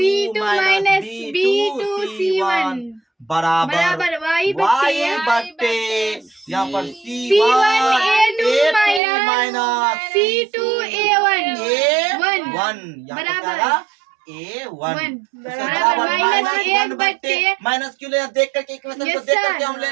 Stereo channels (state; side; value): drops out; left; at 9.0 s